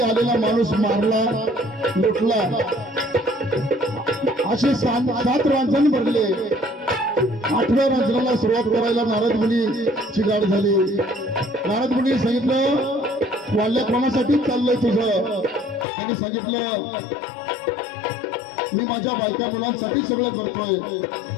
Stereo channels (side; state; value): right; drops out; at 15.9 s